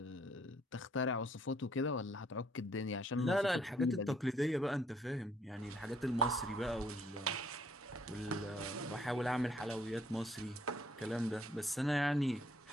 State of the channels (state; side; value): normal; both; correlation 0.65